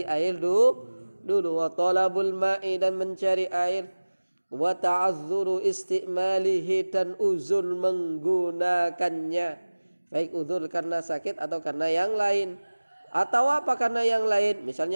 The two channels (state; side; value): inverted; both; correlation -1.00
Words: air dulu. Wa talabul ma'i, dan mencari air. Wa ta'azzuru istimalihi, dan uzur menggunakannya. Baik uzur karena sakit atau karena yang lain. Atau apa karena yang lain?